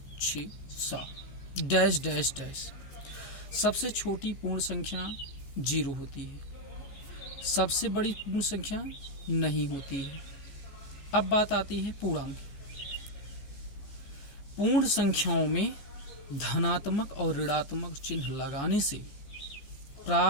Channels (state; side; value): late; right; 14 ms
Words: 6, 7 डैश डैश डैश। सबसे छोटी पूर्ण संख्या 0 होती है। सबसे बड़ी पूर्ण संख्या नहीं होती है। अब बात आती है पूर्णांक। पूर्ण संख्याओं में धनात्मक और ऋणात्मक चिन्ह लगाने से